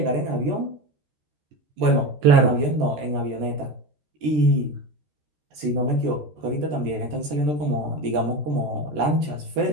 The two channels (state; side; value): late; left; 14 ms